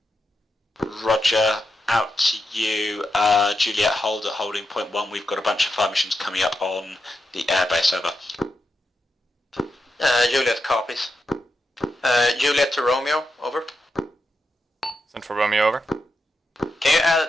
Roger, out to you. Juliet, hold at holding point 1. We've got a bunch of fire missions coming up on the airbase, over. Juliet copies. Juliet to Romeo. Over. Central Romeo, over. Can you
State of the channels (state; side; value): normal; both; correlation 0.86